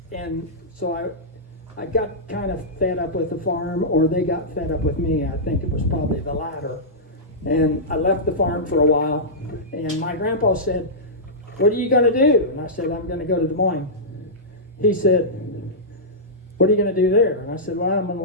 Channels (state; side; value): normal; both; correlation -0.13